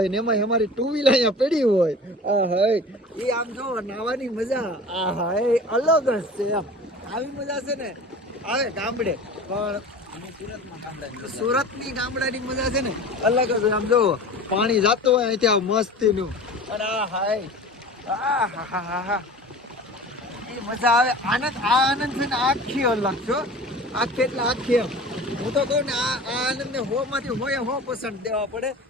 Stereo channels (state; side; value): normal; both; correlation 0.39